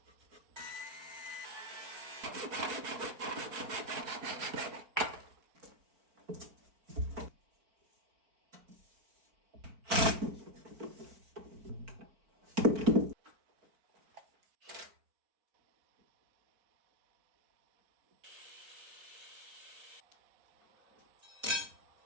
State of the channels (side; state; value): left; late; 4.5 ms